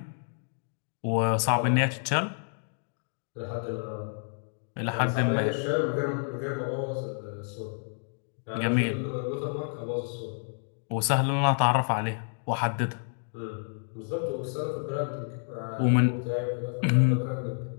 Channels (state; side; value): silent; right; digital silence